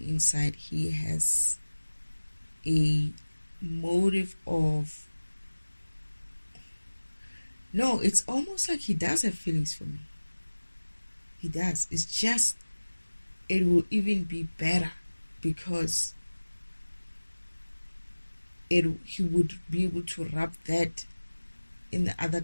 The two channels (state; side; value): inverted; both; correlation -1.00